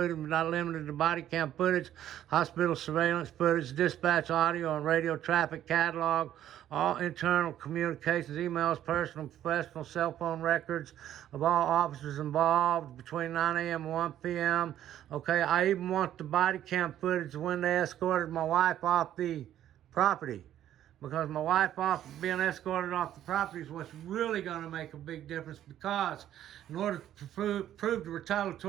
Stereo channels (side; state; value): left; quieter; 11.6 dB